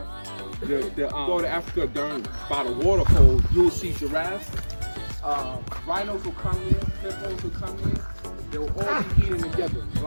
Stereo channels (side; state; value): both; inverted; correlation -1.00